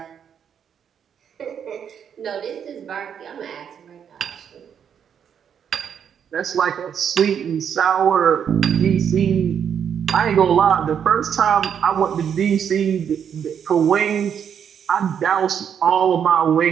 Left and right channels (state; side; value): quieter; left; 8.1 dB